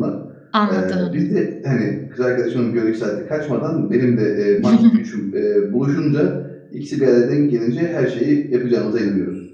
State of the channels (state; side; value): identical; both; correlation 1.00